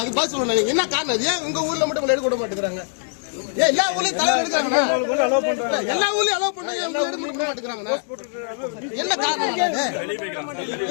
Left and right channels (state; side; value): silent; right; digital silence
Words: அது பாஸ் சொல்லணும். என்ன காரணம்? ஏன் உங்க ஊர்ல மட்டும் எடுக்க விட மாட்டேங்கிறாங்க? ஏன் எல்லா ஊர்லயும் தலைவர் எடுக்கிறாங்க? எல்லா ஊர்லயும் அலோவ் பண்ணாங்க, உங்க எடுக்க விட மாட்டேங்கிறாங்க. என்ன காரணம்?